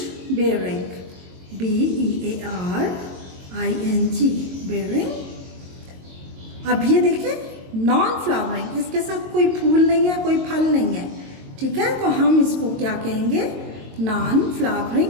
bearing, BEARING, bearing. अब ये देखें, नॉन फ्लावरिंग, इसके साथ कोई फूल नहीं है, कोई फल नहीं है, ठीक है, तो हम इसको क्या कहेंगे? नॉन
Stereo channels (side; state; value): left; late; 22 ms